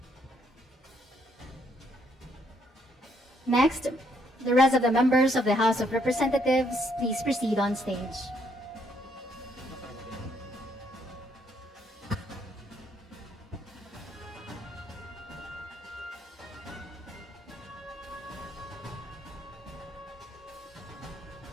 Next, the rest of the members of the House of Representatives, please proceed on stage.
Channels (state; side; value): normal; both; correlation 0.71